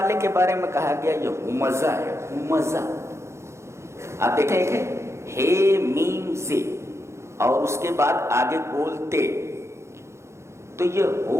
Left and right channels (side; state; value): left; late; 0.13 ms